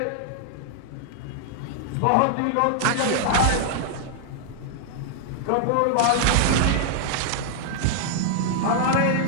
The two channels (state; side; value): different; both; correlation -0.01